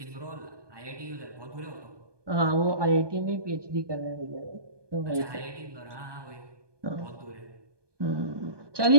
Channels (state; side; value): late; left; 1.2 ms